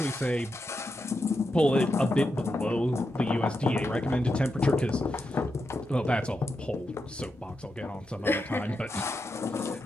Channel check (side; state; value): both; normal; correlation 0.86